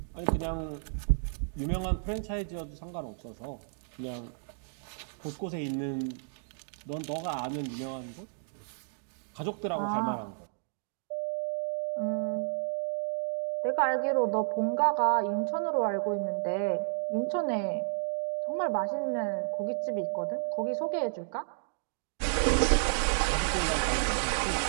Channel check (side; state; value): left; silent; digital silence